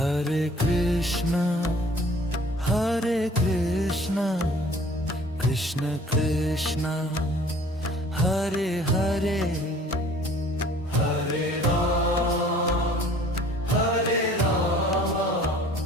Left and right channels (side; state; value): both; normal; correlation 0.52